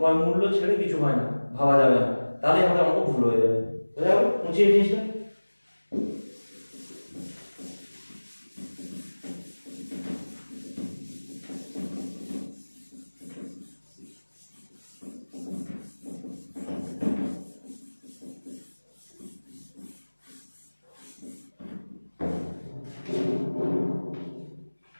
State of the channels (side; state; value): both; inverted; correlation -1.00